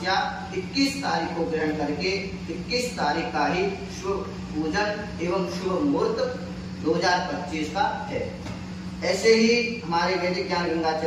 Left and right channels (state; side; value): identical; both; correlation 1.00